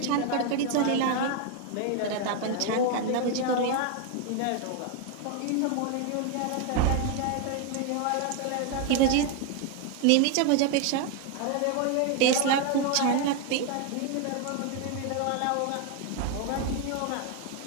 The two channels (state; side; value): different; both; correlation 0.01